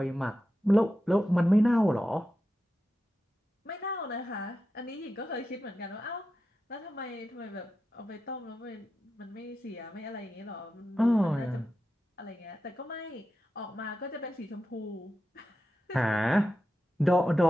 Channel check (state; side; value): normal; both; correlation 0.90